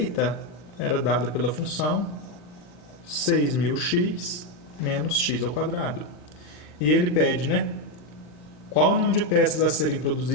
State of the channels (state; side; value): late; right; 40 ms